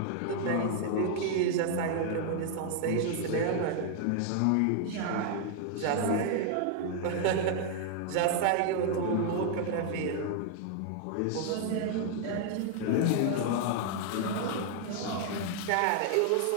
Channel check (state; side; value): different; both; correlation 0.00